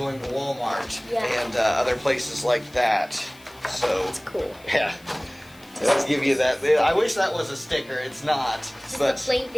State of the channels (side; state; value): left; noise; hiss, 26 dB below the sound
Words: to Walmart and other places like that. So, that's cool. Yeah. Let's give you that. I wish that was a sticker. It's not. It's but just a plain